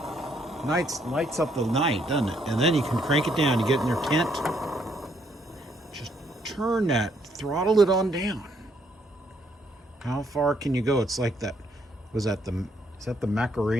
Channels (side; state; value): both; normal; correlation 0.71